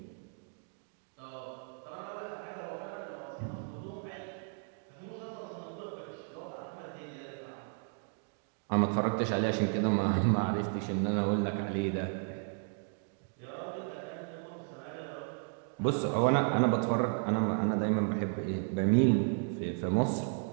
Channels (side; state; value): left; silent; 55 dB below the other